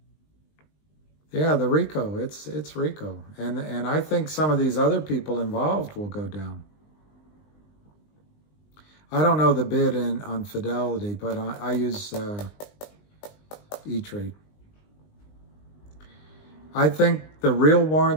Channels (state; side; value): late; right; 20 ms